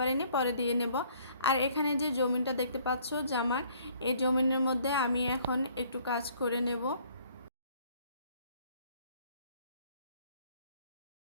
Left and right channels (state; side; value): inverted; both; correlation -0.60